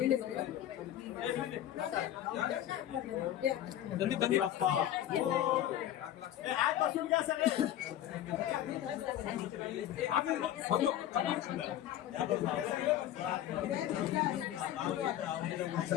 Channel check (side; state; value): right; quieter; 12.1 dB